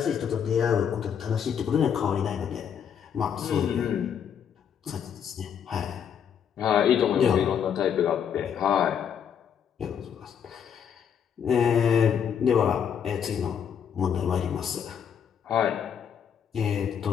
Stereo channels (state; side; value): quieter; right; 8.0 dB